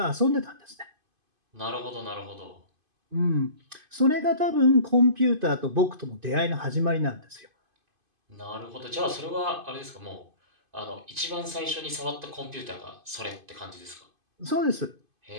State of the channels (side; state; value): left; late; 2.5 ms